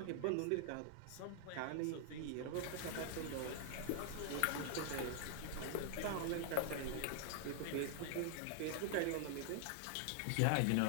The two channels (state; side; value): different; both; correlation -0.01